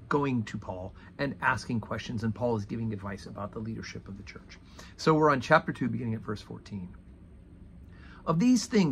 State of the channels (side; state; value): both; identical; correlation 1.00